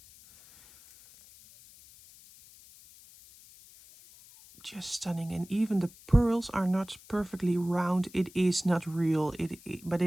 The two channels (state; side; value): noise; left; hiss, 23 dB below the sound